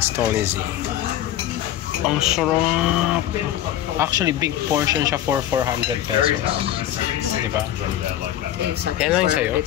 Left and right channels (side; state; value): right; quieter; 12.3 dB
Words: stall ni Z. Ang sarap! Actually, big portion siya for 400 pesos. Diba? Yan lang yung sa'yo?